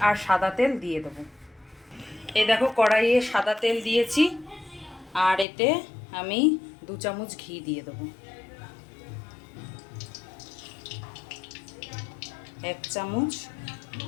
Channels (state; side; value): drops out; right; at 5.5 s